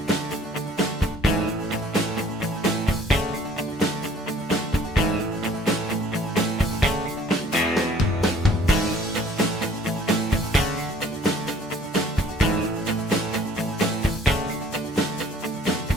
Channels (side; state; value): both; normal; correlation 0.55